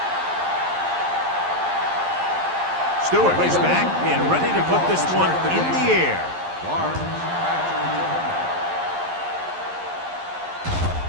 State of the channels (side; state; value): left; late; 11 ms